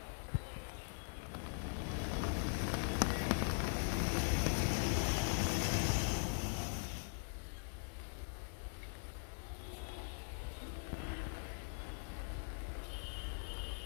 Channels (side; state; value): right; silent; digital silence